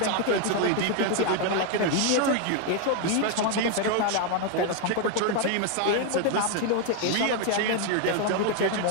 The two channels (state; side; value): different; both; correlation 0.01